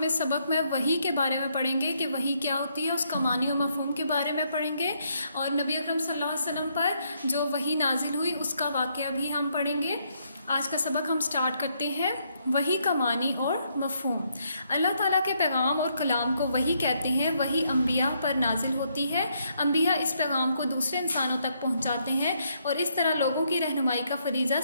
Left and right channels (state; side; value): inverted; both; correlation -0.74